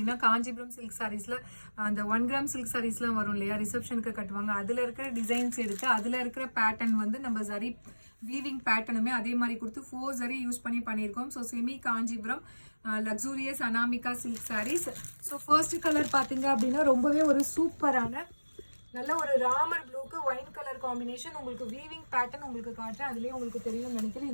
காஞ்சிபுரம் சில்க் சாரீஸில் அந்த 1 கிராம் சில்க் சாரீஸ்லாம் வரும் இல்லையா, ரிசப்ஷனுக்கு கட்டுவாங்க. அதில் இருக்கிற டிசைன்ஸ் எடுத்து அதில் இருக்கிற பேட்டர்ன் வந்து நம்ம ஜரி வீவிங் பேட்டர்னுமே அதே மாதிரி கொடுத்து 4 ஜரி யூஸ் பண்ணி பண்ணியிருக்கோம். So semi Kanchipuram luxurious Anamika silk sarees. So first colour பார்த்தீங்க அப்படின்னா ரொம்பவே ஒரு சூப்பரான நல்ல ஒரு ராமர் ப்ளூக்கு ஒயின் கலர் காம்பினேஷன். உங்களுக்கு வீவிங் பேட்டர்ன் உங்களுக்கு காட்டுறேன், அதுலேயே உங்களுக்கு தெரியும் நினைக்கிறேன்.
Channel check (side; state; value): both; inverted; correlation -1.00